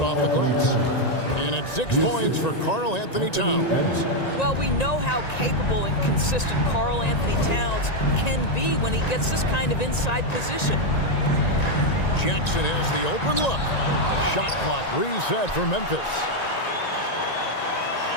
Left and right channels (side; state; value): right; late; 1.9 ms